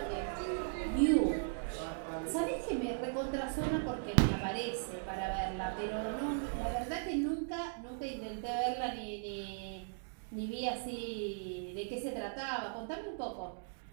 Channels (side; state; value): left; silent; digital silence